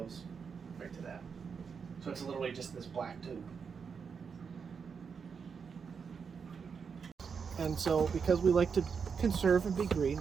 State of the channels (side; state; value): left; quieter; 6.0 dB